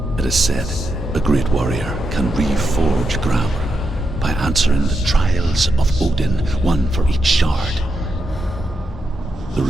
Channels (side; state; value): both; normal; correlation 0.84